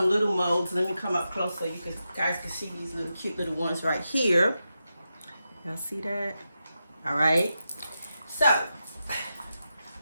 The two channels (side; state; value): both; inverted; correlation -0.89